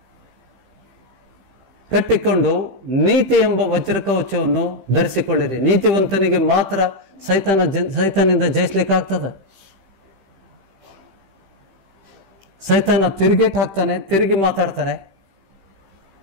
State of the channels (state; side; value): late; left; 15 ms